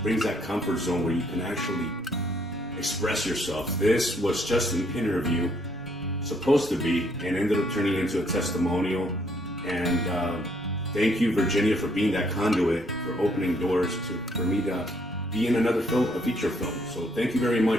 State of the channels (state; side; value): normal; both; correlation 0.68